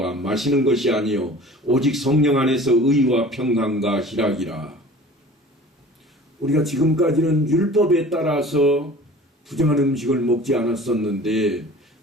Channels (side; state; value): both; normal; correlation 0.44